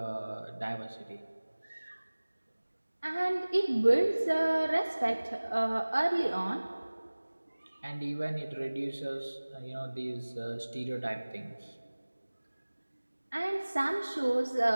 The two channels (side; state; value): both; inverted; correlation -1.00